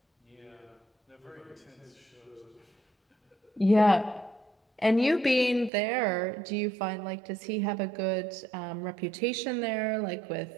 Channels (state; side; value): drops out; left; at 5.7 s